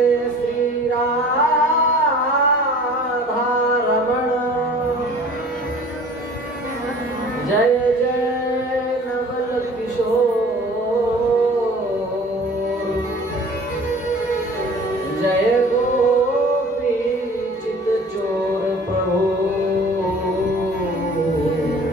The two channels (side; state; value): both; normal; correlation 0.46